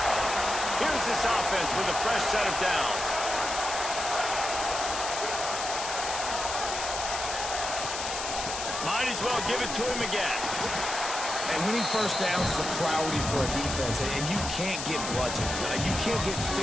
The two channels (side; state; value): left; noise; hiss, 5 dB below the sound